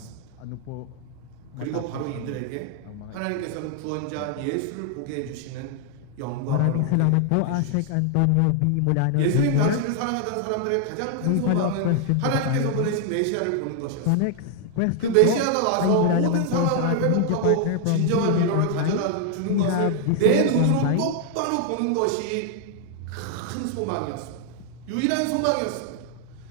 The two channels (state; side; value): different; both; correlation 0.00